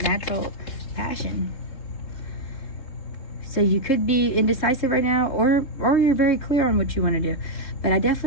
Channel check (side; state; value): right; late; 3.7 ms